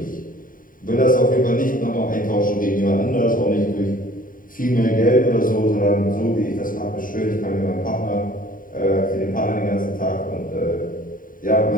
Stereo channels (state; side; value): late; right; 0.40 ms